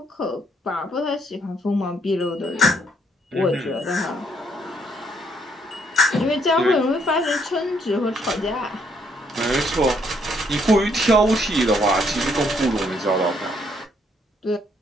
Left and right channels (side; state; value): both; normal; correlation 0.69